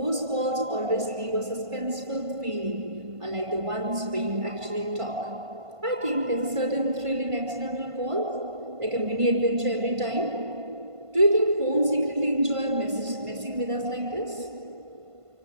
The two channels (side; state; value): left; late; 1.5 ms